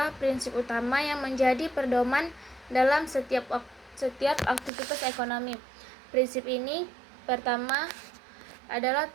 prinsip utama yang menjadi pedoman dalam setiap aktivitas ekonomi. Prinsip ini pertama adalah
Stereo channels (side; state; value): left; drops out; at 4.7 s